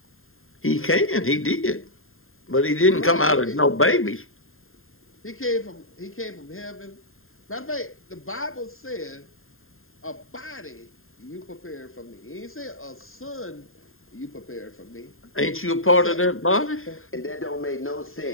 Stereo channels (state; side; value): late; right; 0.61 ms